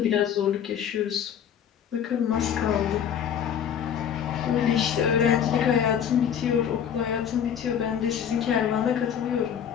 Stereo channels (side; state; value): right; quieter; 8.6 dB